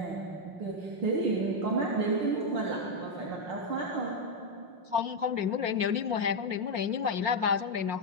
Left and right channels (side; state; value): left; late; 5.6 ms